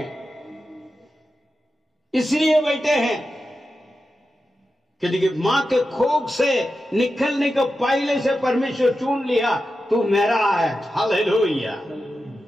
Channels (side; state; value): both; normal; correlation 0.91